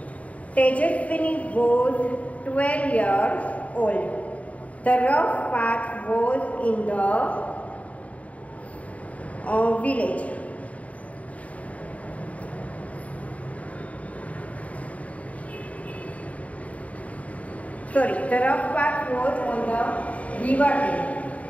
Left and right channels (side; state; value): right; late; 0.068 ms